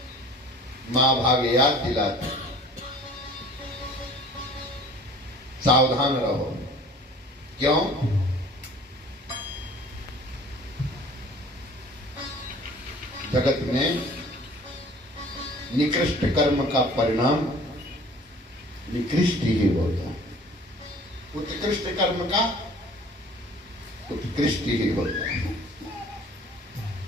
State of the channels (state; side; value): normal; both; correlation 0.49